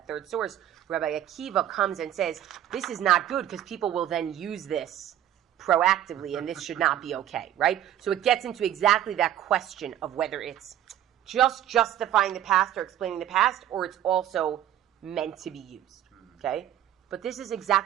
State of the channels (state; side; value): quieter; left; 11.6 dB